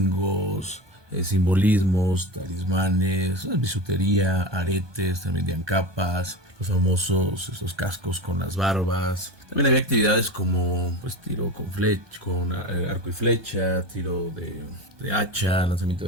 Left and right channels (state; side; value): late; left; 1.2 ms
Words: simbolismos, talismanes, bisutería, aretes, también vendían capas, los famosos estos cascos con las barbas. También había actividades como tiro con arco y flecha, tiro de hacha, lanzamiento